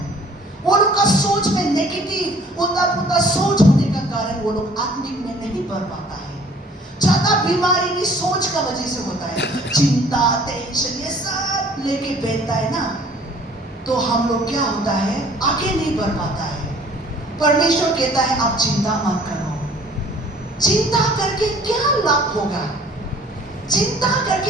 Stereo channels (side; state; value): both; normal; correlation 0.53